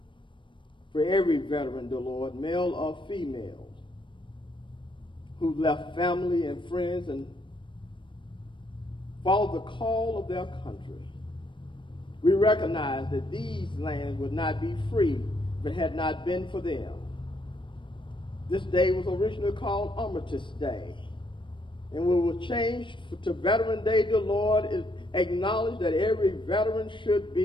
for every veteran, dear Lord, male or female, who left family and friends and followed the call of their country. We recognize that these lands would not be free if it had not been for them. This day was originally called Armistice Day, and we will change to Veteran Day, dear Lord, acknowledge that every veteran should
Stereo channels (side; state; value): right; late; 0.24 ms